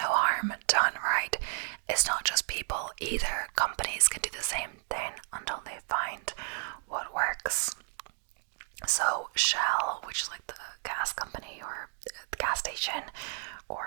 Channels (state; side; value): silent; left; digital silence